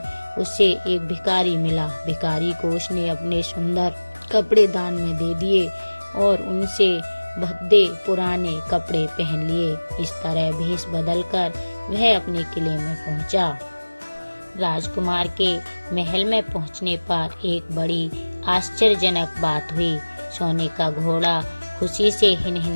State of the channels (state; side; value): inverted; both; correlation -1.00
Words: उसे एक भिखारी मिला। भिखारी को उसने अपने सुंदर कपड़े दान में दे दिए और उनसे भद्दे पुराने कपड़े पहन लिए। इस तरह भेष बदलकर वह अपने किले में पहुंचा। राजकुमार के महल में पहुंचने पर एक बड़ी आश्चर्यजनक बात हुई। सोने का घोड़ा खुशी से